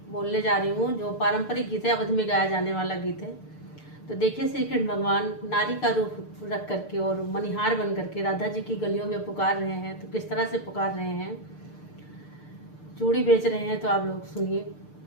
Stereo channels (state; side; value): late; right; 6.7 ms